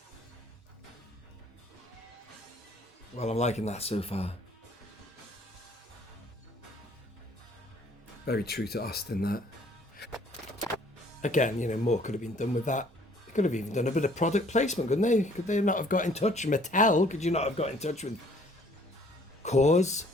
Well, I'm liking that so far. Very true to Austin, that. Again, you know, more could have been done with that. They could have even done a bit of product placement, couldn't they? Could they not have got in touch? Mattel, could you not have got in touch with Coors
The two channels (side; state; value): both; normal; correlation 0.59